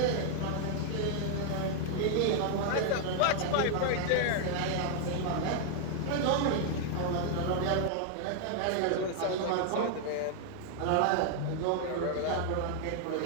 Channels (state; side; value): different; both; correlation 0.00